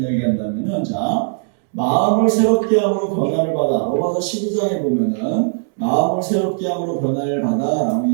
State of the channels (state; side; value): silent; left; digital silence